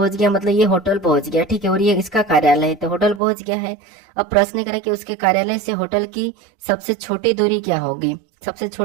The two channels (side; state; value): left; drops out; at 3.2 s